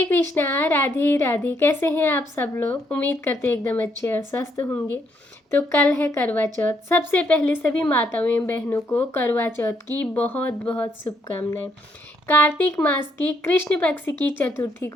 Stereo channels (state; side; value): normal; both; correlation 0.73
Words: कृष्णा, राधे राधे। कैसे हैं आप सब लोग? उम्मीद करते हैं एकदम अच्छे और स्वस्थ होंगे। तो कल है करवा चौथ। सबसे पहले सभी माताओं एवं बहनों को करवा चौथ की बहुत बहुत शुभकामनाएं। कार्तिक मास की कृष्ण पक्ष की चतुर्थी